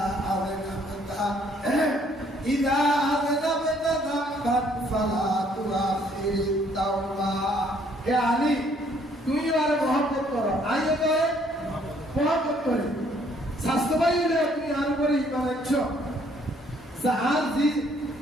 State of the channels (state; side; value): normal; both; correlation 0.64